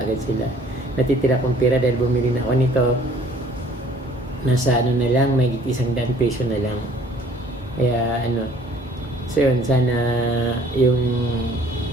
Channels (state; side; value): normal; both; correlation 0.55